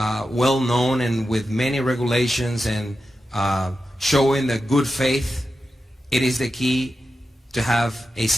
well known and with many regulations and showing the good faith, it is the key to have a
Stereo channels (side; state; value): both; normal; correlation 0.90